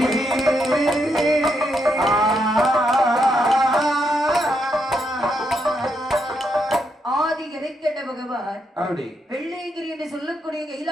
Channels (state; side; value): normal; both; correlation 0.79